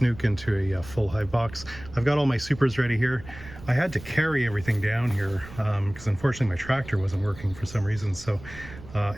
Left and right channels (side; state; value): right; noise; rumble, 16 dB below the sound